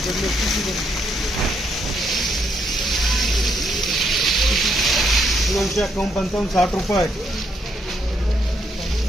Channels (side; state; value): both; normal; correlation 0.75